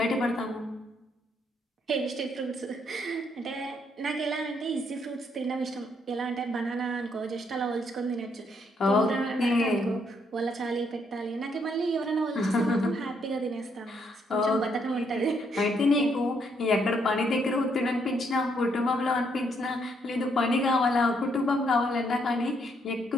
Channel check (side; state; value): both; normal; correlation 0.73